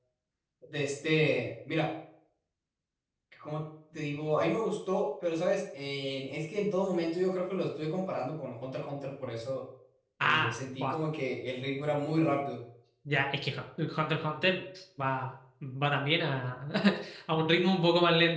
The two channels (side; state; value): both; identical; correlation 1.00